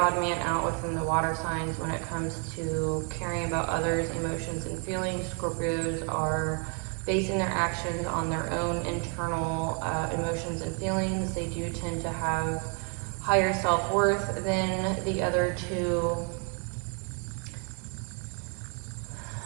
man out within the water signs when it comes to caring about others' emotions and feelings. Scorpios are basing their actions on their own internal emotions and feelings. They do tend to have higher self-worth than the other two.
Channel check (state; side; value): quieter; left; 39.1 dB